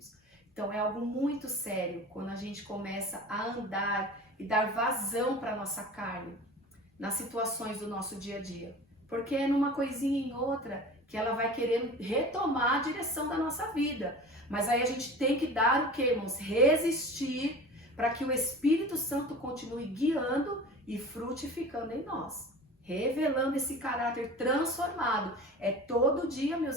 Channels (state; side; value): normal; both; correlation 0.37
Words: Então é algo muito sério quando a gente começa a andar e dar vazão para a nossa carne nas situações do nosso dia a dia. Porque é numa coisinha em outra que ela vai querer retomar a direção da nossa vida. Mas aí a gente tem que dar o que, irmãos? Resistir para que o Espírito Santo continue guiando e frutificando em nós. Revelando esse caráter transformado. É todo dia,